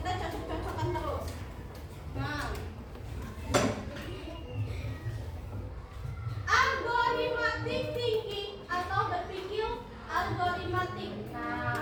cocok-cocokkan terus. Nah, algoritmatic thinking atau berpikir algoritmatik.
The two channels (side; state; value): both; identical; correlation 1.00